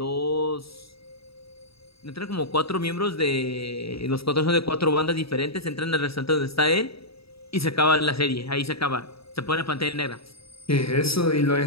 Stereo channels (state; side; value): late; right; 0.76 ms